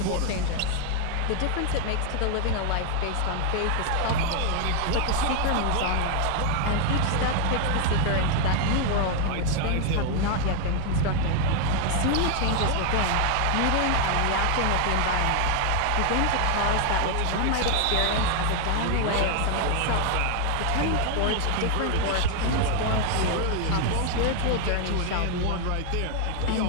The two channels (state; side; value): different; both; correlation 0.00